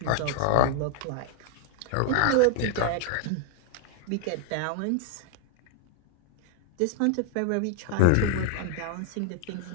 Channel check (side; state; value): both; different; correlation 0.00